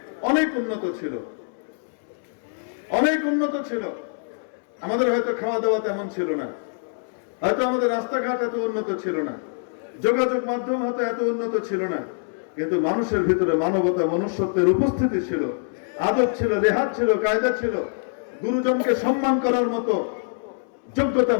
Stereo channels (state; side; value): silent; right; 62 dB below the other